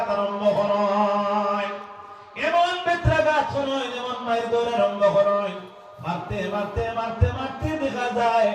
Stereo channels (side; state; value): both; identical; correlation 1.00